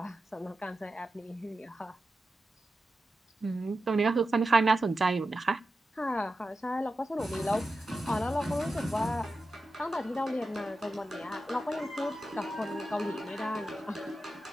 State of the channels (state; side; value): normal; both; correlation 0.91